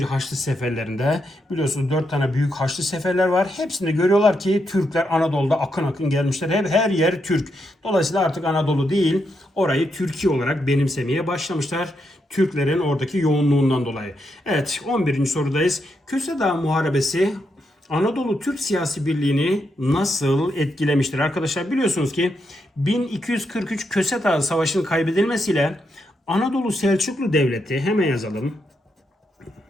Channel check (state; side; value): normal; both; correlation 0.81